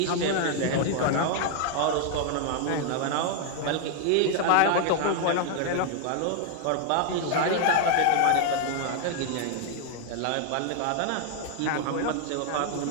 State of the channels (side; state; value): both; different; correlation 0.00